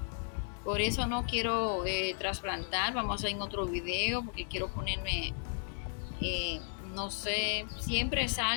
Por eso no quiero trasplantar. Vamos a hacer en otro video porque quiero ponerme, no sé, siempre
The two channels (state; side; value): silent; right; 55 dB below the other